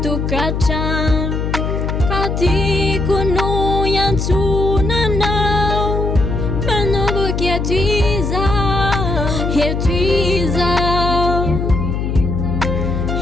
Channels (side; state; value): left; noise; hum, 1 dB below the sound